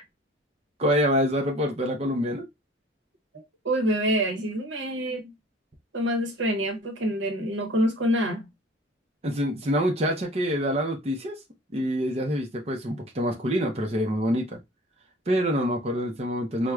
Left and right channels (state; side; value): normal; both; correlation 0.48